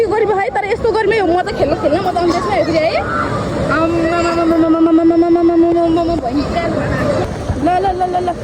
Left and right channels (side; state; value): both; identical; correlation 1.00